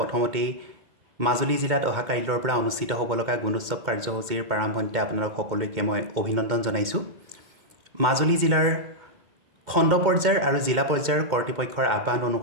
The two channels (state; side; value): late; left; 2.2 ms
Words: মাজুলী জিলাত অহা কাইলৈৰ পৰা অনুষ্ঠিত হ'ব লগা গুণোৎসৱ কাৰ্যসূচীৰ প্ৰাৰম্ভণিতে আপোনালোক সকলোকে মই অভিনন্দন জনাইছোঁ। মাজুলী জিলাৰ খণ্ড পৰ্যায়ৰ আৰু জিলা পৰ্যায়ৰ কৰ্তৃপক্ষৰ আহ্বান